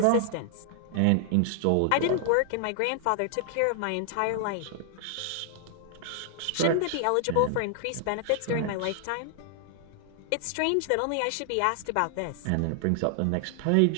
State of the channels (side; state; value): both; different; correlation 0.00